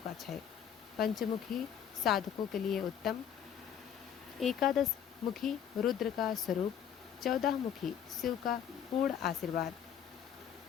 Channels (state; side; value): quieter; right; 8.8 dB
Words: क्षय, पंचमुखी साधकों के लिए उत्तम। एकादश मुखी रुद्र का स्वरूप, 14 मुखी शिव का पूर्ण आशीर्वाद